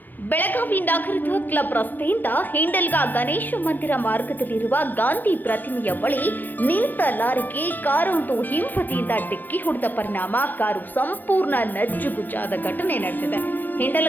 ಬೆಳಗಾವಿ ನಗರದ ಕ್ಲಬ್ ರಸ್ತೆಯಿಂದ ಹಿಂಡಲ್ಗಾ ಗಣೇಶ ಮಂದಿರ ಮಾರ್ಗದಲ್ಲಿರುವ ಗಾಂಧಿ ಪ್ರತಿಮೆಯ ಬಳಿ ನಿಂತ ಲಾರಿಗೆ ಕಾರೊಂದು ಹಿಂಬದಿಯಿಂದ ಡಿಕ್ಕಿ ಹೊಡೆದ ಪರಿಣಾಮ ಕಾರು ಸಂಪೂರ್ಣ ನಜ್ಜುಗುಜ್ಜಾದ ಘಟನೆ ನಡೆದಿದೆ.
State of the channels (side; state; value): right; late; 0.090 ms